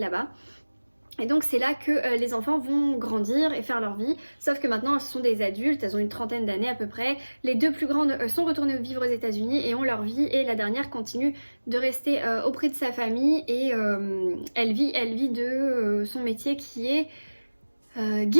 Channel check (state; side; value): inverted; both; correlation -1.00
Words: Et donc c'est là que les enfants vont grandir et faire leur vie, sauf que maintenant ce sont des adultes, elles ont une trentaine d'années à peu près. Les deux plus grandes sont retournées vivre aux États-Unis et ont leur vie, et la dernière continue de rester auprès de sa famille et elle vit de son métier qui est